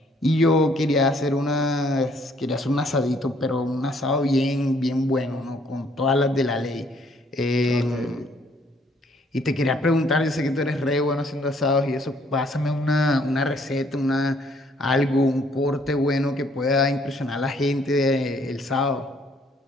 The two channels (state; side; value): normal; both; correlation 0.64